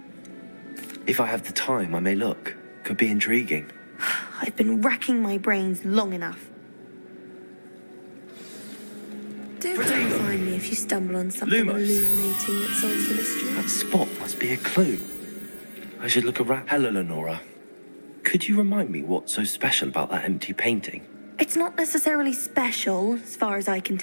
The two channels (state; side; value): inverted; both; correlation -1.00